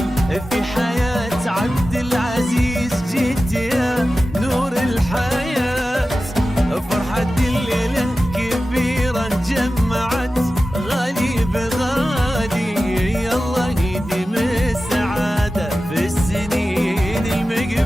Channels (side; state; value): both; normal; correlation 0.94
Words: في حياة عبد العزيز جيت يا نور الحياة. فرحة الليلة كبيرة جمعت غالي بغالي الله يديم السعادة في السنين